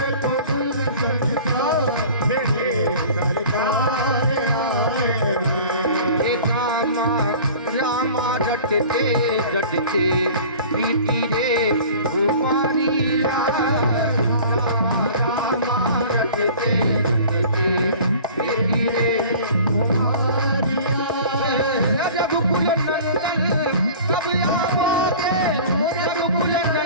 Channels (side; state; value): both; inverted; correlation -0.43